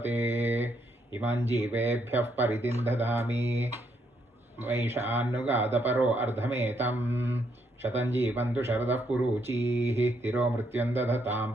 इमं जीवेभ्यः परिदिं ददामि वैशानुगादपरो अर्धमेतं शतं जीवन्तु शरदः पुरूचीः तिरो मृत्युं दधतां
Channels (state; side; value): normal; both; correlation 0.74